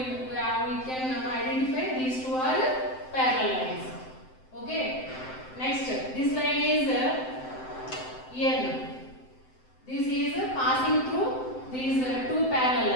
can identify these two are parallel lines. Okay. Next, this line is N. This is passing through these two parallel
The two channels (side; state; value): right; late; 7.8 ms